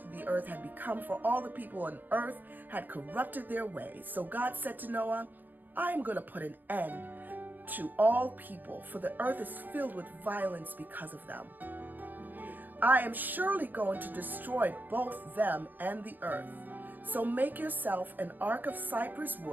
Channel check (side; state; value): left; late; 0.087 ms